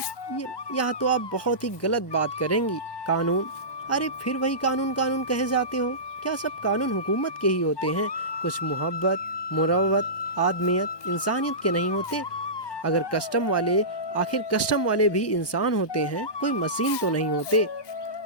यहाँ तो आप बहुत ही गलत बात करेंगी। कानून, अरे फिर वही कानून कानून कहे जाते हो। क्या सब कानून हुकूमत के ही होते हैं? कुछ मोहब्बत, मुरव्वत, आदमियत, इंसानियत के नहीं होते? अगर कस्टम वाले, आखिर कस्टम वाले भी इंसान होते हैं, कोई मशीन तो नहीं होते।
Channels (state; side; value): late; right; 1.2 ms